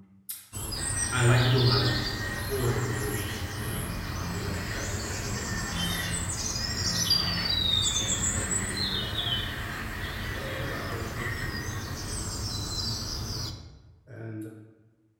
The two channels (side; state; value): both; identical; correlation 1.00